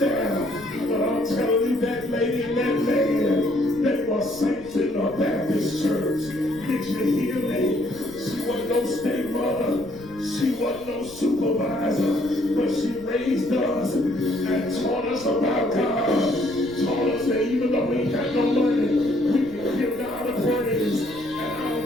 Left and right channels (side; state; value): left; noise; rumble, 20 dB below the sound